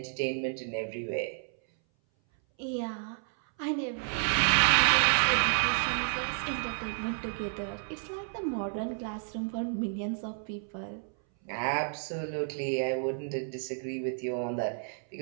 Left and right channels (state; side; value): silent; left; 57 dB below the other